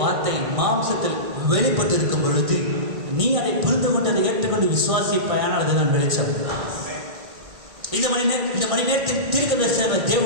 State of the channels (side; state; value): left; late; 1.5 ms